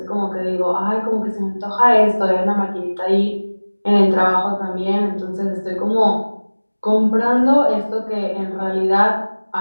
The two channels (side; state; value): both; inverted; correlation -1.00